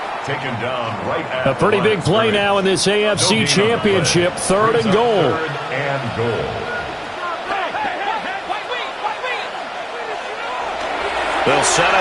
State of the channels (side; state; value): both; identical; correlation 1.00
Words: Taken down right at A pretty big play now in this AFC Championship. Third and goal. Third and goal. They'll set